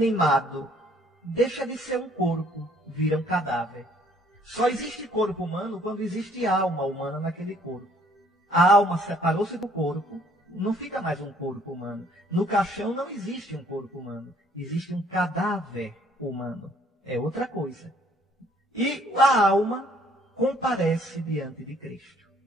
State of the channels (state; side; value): normal; both; correlation 0.61